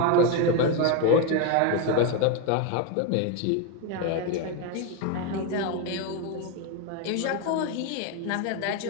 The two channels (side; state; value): both; different; correlation 0.02